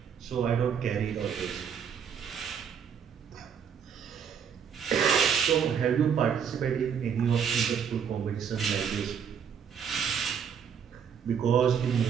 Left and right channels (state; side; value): quieter; left; 7.5 dB